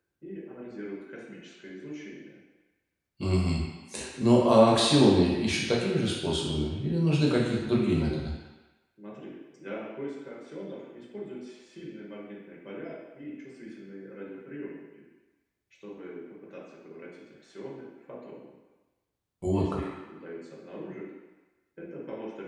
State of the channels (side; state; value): both; identical; correlation 1.00